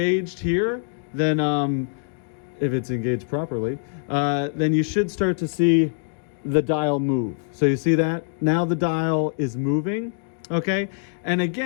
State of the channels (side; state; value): right; silent; digital silence